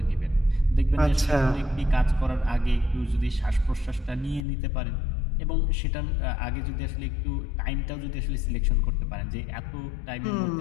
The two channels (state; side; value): drops out; right; at 4.5 s